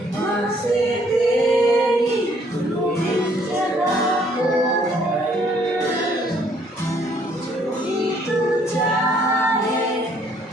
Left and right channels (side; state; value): both; normal; correlation 0.65